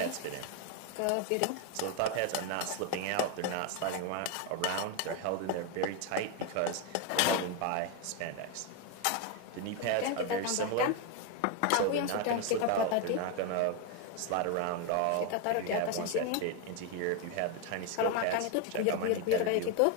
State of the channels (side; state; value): both; different; correlation 0.01